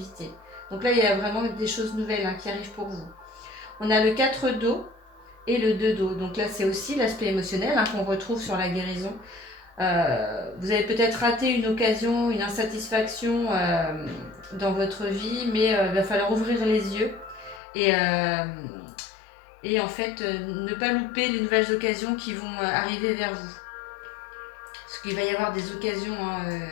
Donc là, il y a vraiment des choses nouvelles qui arrivent pour vous. On a le 4 d'eau et le 2 d'eau. Donc là, c'est aussi l'aspect émotionnel qu'on retrouve sur la guérison. Vous avez peut-être raté une occasion, une insatisfaction dans votre vie, mais il va falloir ouvrir les yeux et en fait ne pas louper les nouvelles occasions qui vont arriver vers vous. Parce qu'il va y avoir des occasions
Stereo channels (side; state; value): right; drops out; at 17.6 s